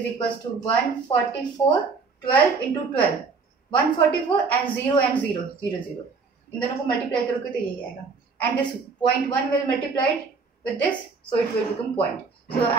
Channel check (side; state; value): left; quieter; 4.7 dB